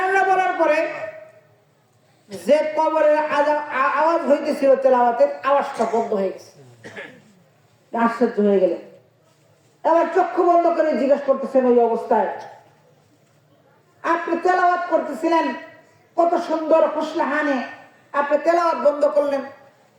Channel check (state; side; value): identical; both; correlation 1.00